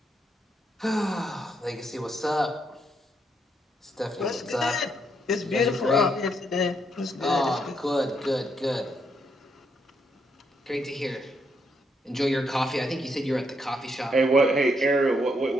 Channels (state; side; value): normal; both; correlation 0.76